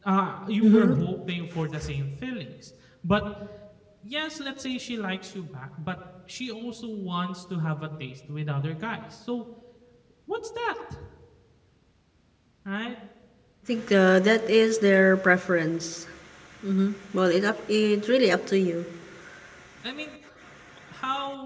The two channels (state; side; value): identical; both; correlation 1.00